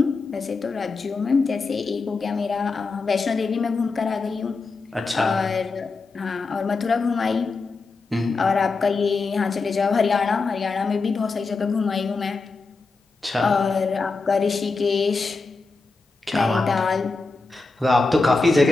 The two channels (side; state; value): right; quieter; 4.0 dB